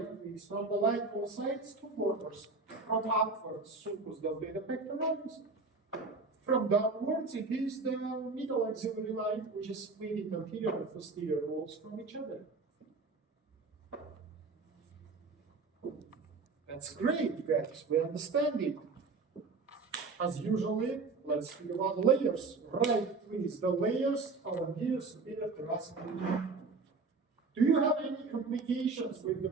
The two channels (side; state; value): left; quieter; 4.1 dB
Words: is from the line both sides, two borders. From upwards, sulcus deltoid pectoris. From downwards, it is the middle axillary line, which is splitting anterior and posterior walls from each other. That's great, guys. We understand it. As usually, let's speak about layers. Right, please. The layers of anterior superior thoracic region. Do you have any complications with the